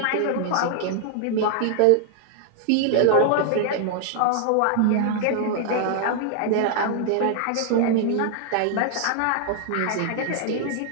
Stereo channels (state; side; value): different; both; correlation 0.00